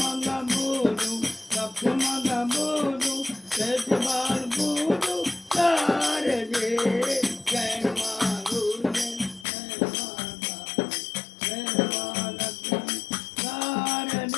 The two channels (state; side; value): drops out; right; at 9.5 s